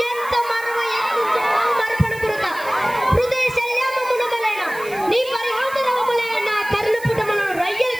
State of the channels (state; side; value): noise; right; hiss, 18 dB below the sound